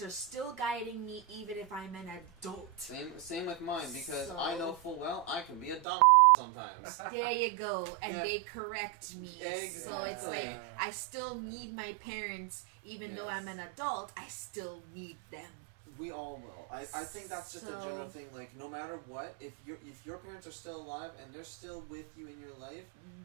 are still guiding me, even if I'm an adult. same with mine, because So- I know full well I can be a dumb sometimes. There you go. And Yeah. they correct me. Exactly. So it's like, I still need my parents, even though I'm Yes. an adult, I still need them. We all will. I think that's just a general So- thing. Like, no matter what, if your parents are still alive and they're still with you in your life,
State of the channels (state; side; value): drops out; left; at 5.9 s